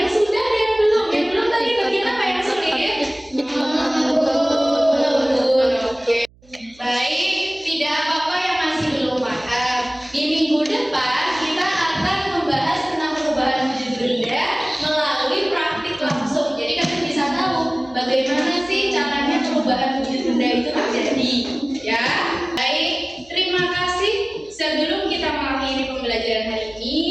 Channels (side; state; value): right; noise; hum, 29 dB below the sound